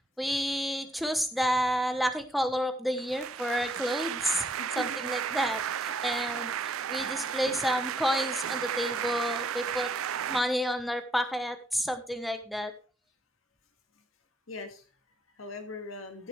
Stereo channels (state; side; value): normal; both; correlation 0.70